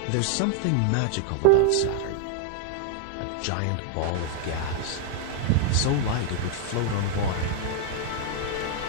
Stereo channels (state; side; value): different; both; correlation 0.00